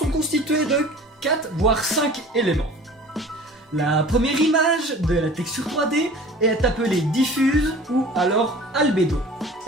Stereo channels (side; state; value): both; normal; correlation 0.43